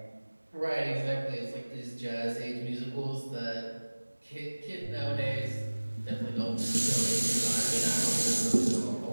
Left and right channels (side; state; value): both; inverted; correlation -1.00